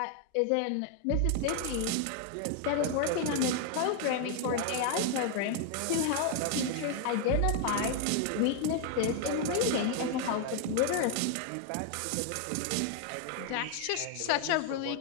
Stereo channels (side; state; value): both; different; correlation 0.00